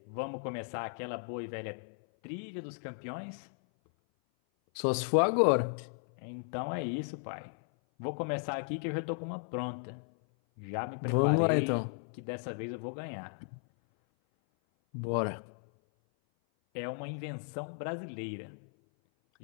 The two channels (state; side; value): silent; right; 54 dB below the other